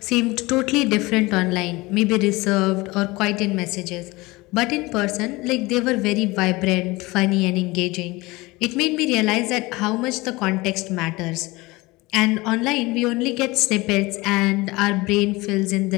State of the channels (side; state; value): right; quieter; 22.1 dB